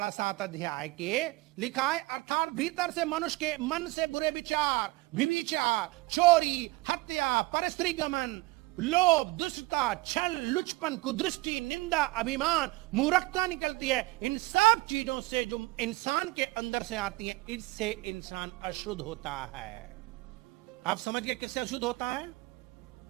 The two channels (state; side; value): quieter; left; 21.7 dB